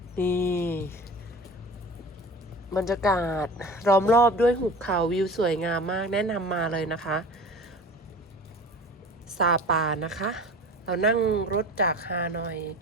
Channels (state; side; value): normal; both; correlation 0.39